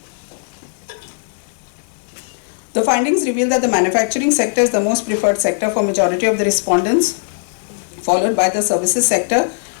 is the most preferred sector for majority of the respondents, followed by the services sector,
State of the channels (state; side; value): silent; right; digital silence